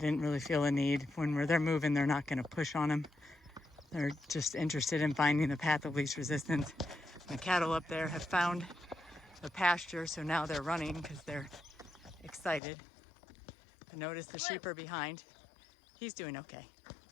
really feel a need. When they're moving, they're not going to push on them. They're just interested in finding the path of least resistance. The cattle up there have found the pasture, so now they're running because they're excited. But notice the sheep are behind. He's doing okay.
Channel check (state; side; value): drops out; right; at 12.6 s